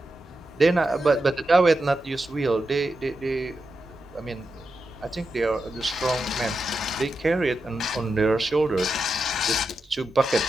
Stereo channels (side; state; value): both; normal; correlation 0.88